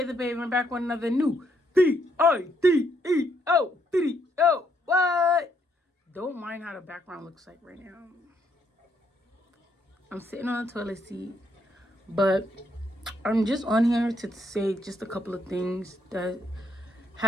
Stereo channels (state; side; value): normal; both; correlation 0.73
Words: the Baby. I'm back with another new video video. What? Don't mind how the background looks like right now. I'm sitting on the toilet seat, but I'm just on here to say just a couple of things that